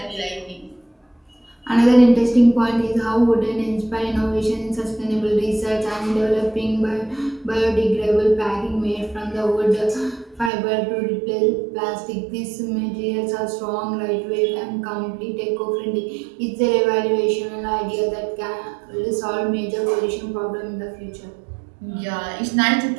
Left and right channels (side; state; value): left; drops out; at 10.5 s